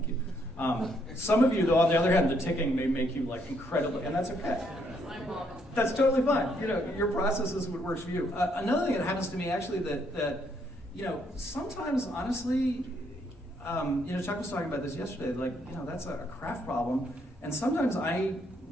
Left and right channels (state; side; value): normal; both; correlation 0.72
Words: you. Some of you, though, on the other hand, the ticking may make you like incredibly, and that's okay. That's totally fine. You know, your process is what works for you. Another thing that happens to me actually that you know, sometimes honestly, you know, Chuck was talking about this yesterday. Like, you know, that's a craft problem, and sometimes I